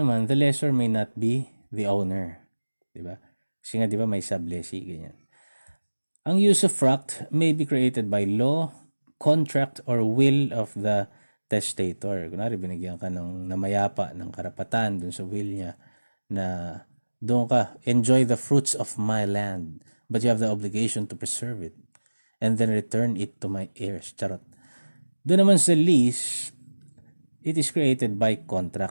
the lessor may not be the owner. Diba? Kasi nga, diba, may sublessee, ganyan. Ang usufruct may be created by law, contract, or will of the testator. Kunwari, binigyan ka ng namayapa ng karapatan dun sa will niya na doon ka, enjoy the fruits of my land, but you have the obligation to preserve it and then return it to my heirs. Charot. Doon naman sa lease, it is created by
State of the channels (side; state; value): both; inverted; correlation -1.00